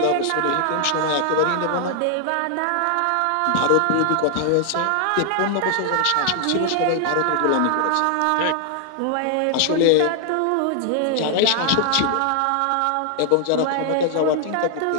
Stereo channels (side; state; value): both; different; correlation 0.00